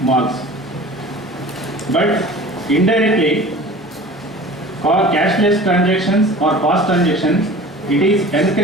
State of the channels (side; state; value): both; normal; correlation 0.41